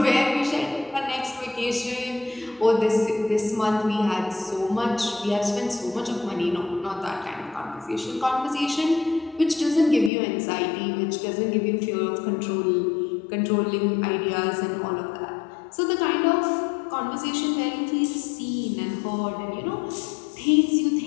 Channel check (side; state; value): right; drops out; at 10.1 s